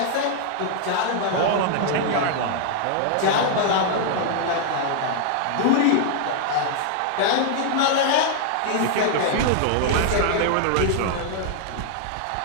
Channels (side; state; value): both; different; correlation 0.00